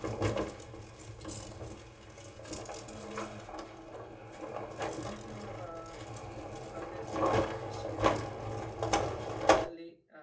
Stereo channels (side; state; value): both; identical; correlation 1.00